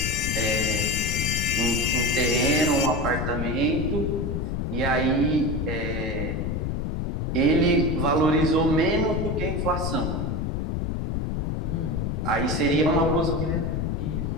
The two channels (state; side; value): noise; left; rumble, 1 dB below the sound